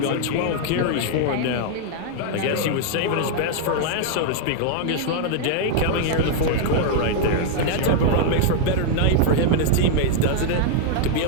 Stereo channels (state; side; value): different; both; correlation 0.00